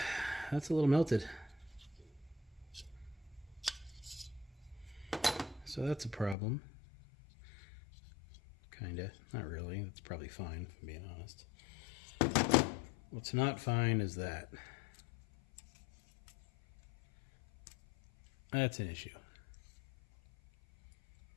little melted. So that's a problem. Kinda. Not really. That's probably fine, if I'm being honest. What's not fine is that. That's an issue.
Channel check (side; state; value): right; drops out; at 6.4 s